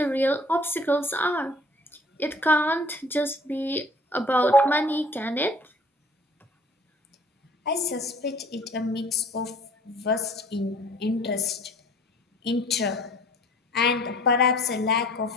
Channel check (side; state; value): both; normal; correlation 0.52